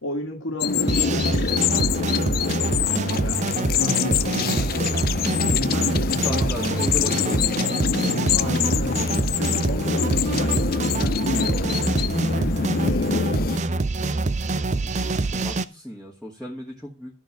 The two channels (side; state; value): both; normal; correlation 0.50